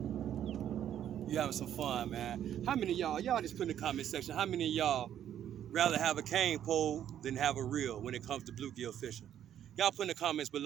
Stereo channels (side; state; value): left; quieter; 10.4 dB